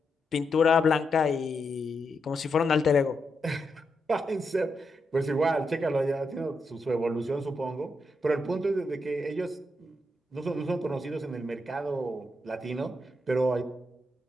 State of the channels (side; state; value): both; normal; correlation 0.83